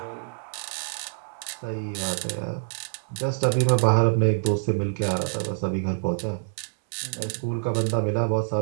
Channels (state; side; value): silent; left; digital silence